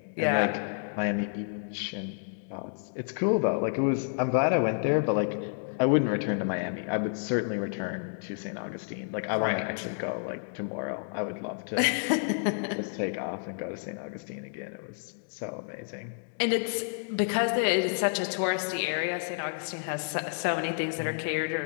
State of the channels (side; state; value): right; silent; digital silence